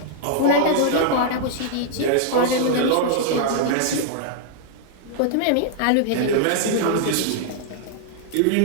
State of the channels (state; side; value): different; both; correlation -0.01